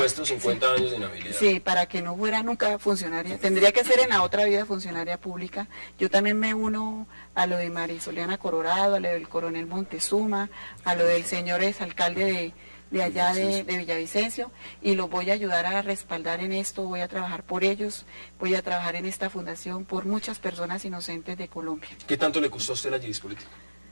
50 sí, años de inhabilidad. Sí, para que no fuera nunca funcionaria. Tendría que ser en la otra vida funcionaria pública. Yo también me uno a lo de Marisoliana Colorado, a lo del coronel Montezuma, a lo del señor exalcalde de allá de Villavicencio, y los voy a ayudar a respaldar en esto, voy a trabajar por ellos, voy a trabajar en esta fundación por muchas personas inocentes de Colombia. ¿Qué tanto le costó a usted la Gidis política?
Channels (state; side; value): inverted; both; correlation -1.00